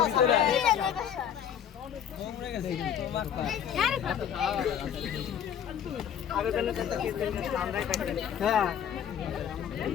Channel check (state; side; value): quieter; right; 9.0 dB